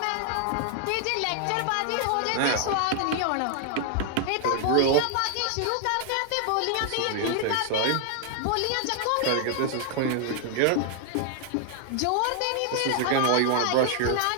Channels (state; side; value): different; both; correlation 0.00